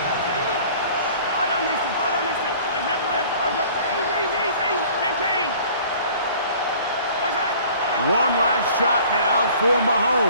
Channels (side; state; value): both; inverted; correlation -0.49